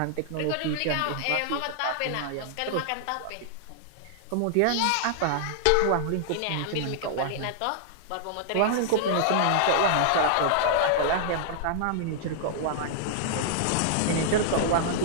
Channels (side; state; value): both; different; correlation -0.01